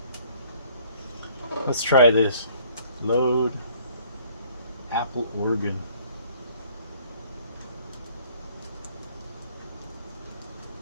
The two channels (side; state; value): both; inverted; correlation -0.58